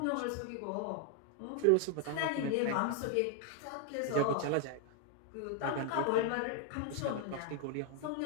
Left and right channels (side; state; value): both; different; correlation 0.00